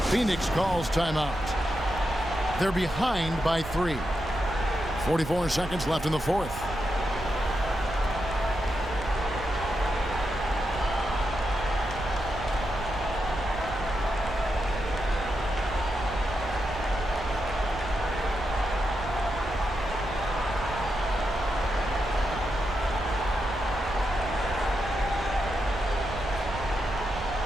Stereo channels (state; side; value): noise; right; rumble, 10 dB below the sound